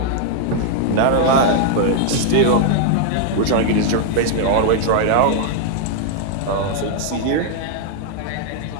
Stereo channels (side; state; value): both; different; correlation 0.00